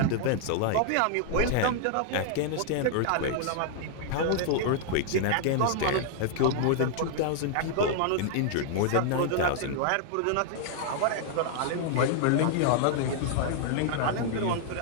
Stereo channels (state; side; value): different; both; correlation -0.01